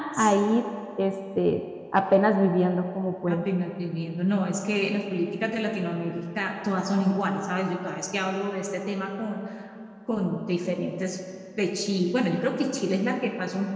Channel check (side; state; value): both; identical; correlation 1.00